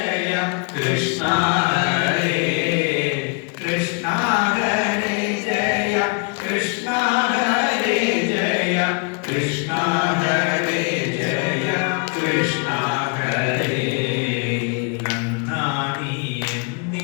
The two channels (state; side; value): quieter; right; 35.3 dB